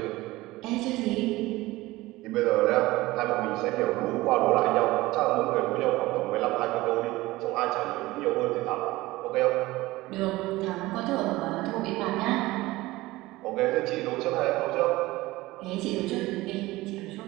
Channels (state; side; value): quieter; left; 19.0 dB